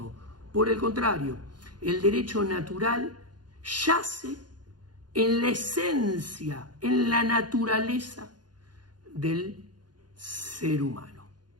Por el contrario, el derecho natural yace en la esencia, en la naturaleza del ser humano.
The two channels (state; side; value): late; left; 0.70 ms